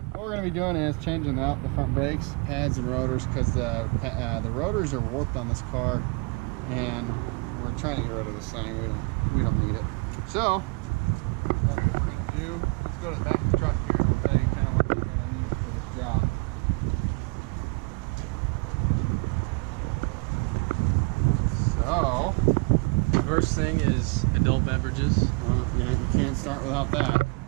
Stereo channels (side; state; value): left; quieter; 30.8 dB